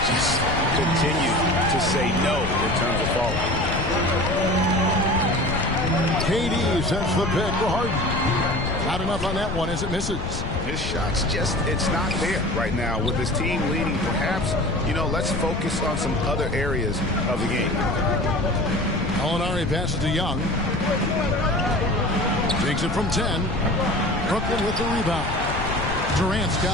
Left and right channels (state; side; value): noise; left; rumble, 4 dB below the sound